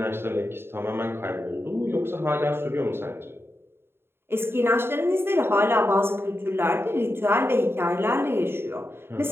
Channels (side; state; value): left; late; 0.11 ms